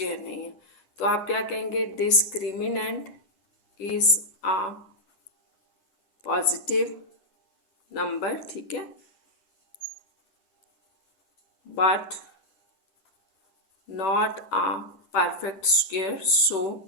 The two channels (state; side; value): late; right; 10 ms